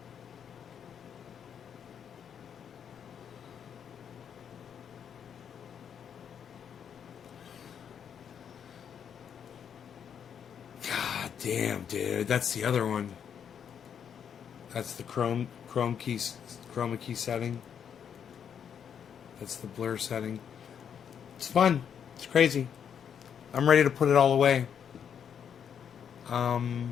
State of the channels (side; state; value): right; quieter; 8.0 dB